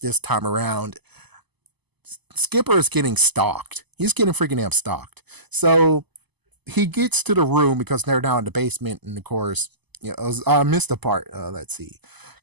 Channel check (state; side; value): late; left; 0.99 ms